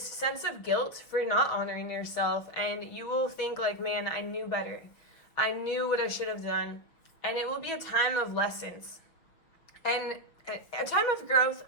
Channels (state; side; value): late; right; 6.3 ms